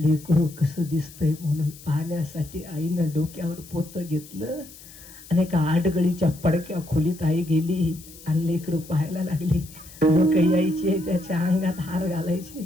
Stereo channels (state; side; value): noise; left; hiss, 19 dB below the sound